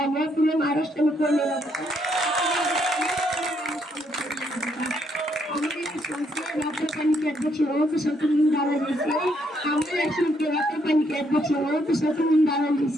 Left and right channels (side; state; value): both; normal; correlation 0.73